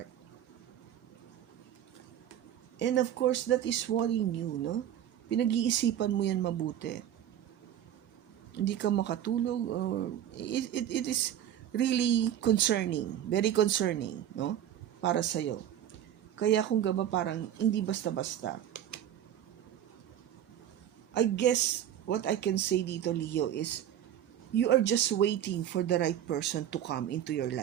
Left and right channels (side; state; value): left; quieter; 10.8 dB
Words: And of course, that is worrying you, no? Pinag-iisipan mo yan mabuti. Hindi ka makatulog, or it is really concerning, very concerning, no? Para sa'yo. Kaya kung gaba parang hindi basta-basta. I guess what I can say dito, Leo, is you are just waiting for the right person to come into your